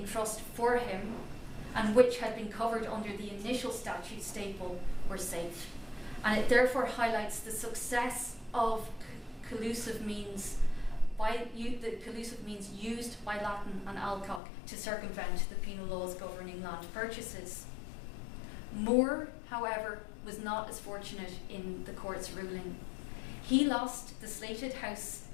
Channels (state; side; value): drops out; right; at 14.4 s